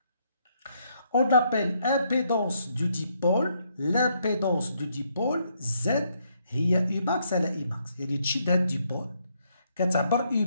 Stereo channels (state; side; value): inverted; both; correlation -0.73